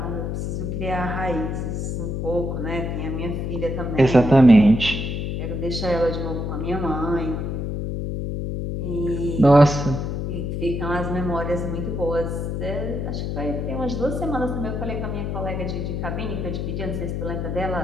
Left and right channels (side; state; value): left; noise; hum, 2 dB below the sound